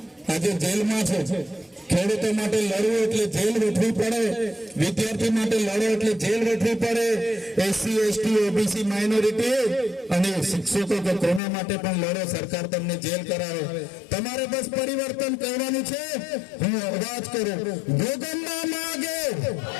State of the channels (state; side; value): drops out; right; at 11.4 s